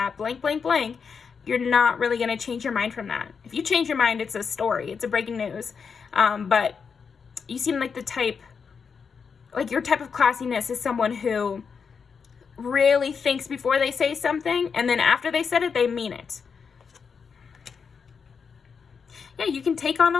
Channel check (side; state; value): right; quieter; 6.0 dB